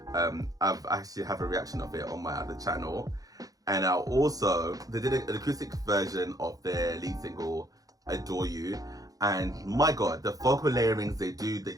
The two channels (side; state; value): left; late; 0.17 ms